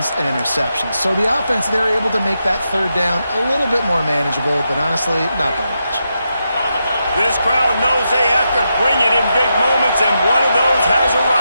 and interceptions. So the offense, they're able to make that 3rd down a little bit more manageable, but honestly, not by much. This crowd knows they have to bring it in big moments, and one of those has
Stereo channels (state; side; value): inverted; both; correlation -0.85